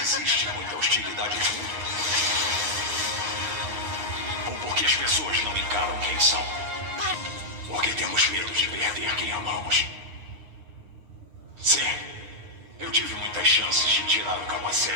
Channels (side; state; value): left; late; 9.9 ms